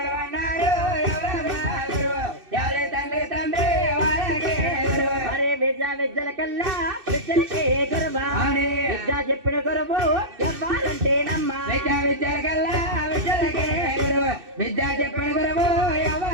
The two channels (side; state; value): left; late; 2.6 ms